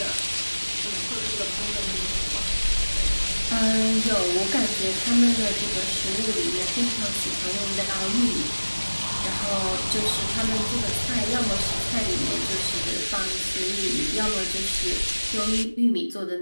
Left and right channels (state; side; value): inverted; both; correlation -1.00